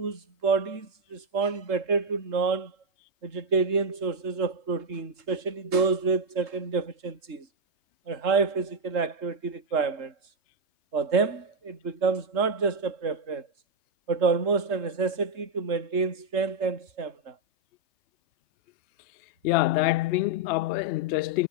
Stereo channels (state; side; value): late; left; 3.7 ms